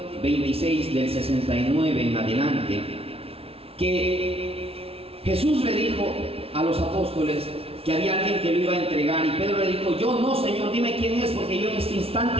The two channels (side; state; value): left; late; 0.28 ms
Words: 26, del 69 en adelante, que Jesús le dijo a los apóstoles que había alguien que lo iba a entregar, y Pedro le dijo: yo no, Señor, dime quién es, porque yo en este